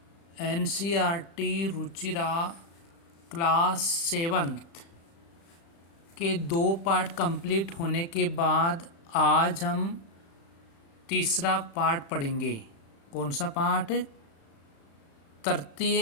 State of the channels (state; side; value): late; right; 36 ms